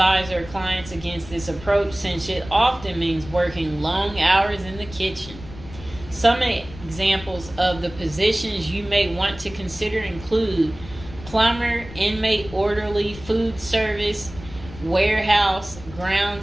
our clients against this approach since it often means working long hours in the kitchen. Some examples of the positions you may want to consider include plumber, inmate orderly, food service, warehouse,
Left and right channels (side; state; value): left; noise; rumble, 16 dB below the sound